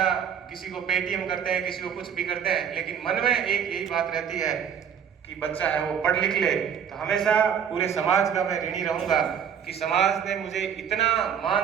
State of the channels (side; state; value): left; quieter; 8.0 dB